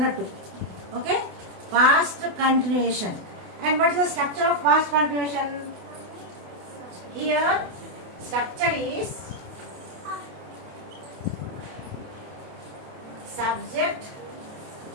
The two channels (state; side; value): late; left; 28 ms